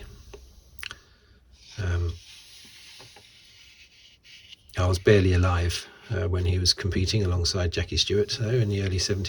I was barely alive when he was competing alongside Jackie Stewart, though, in the early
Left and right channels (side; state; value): both; identical; correlation 1.00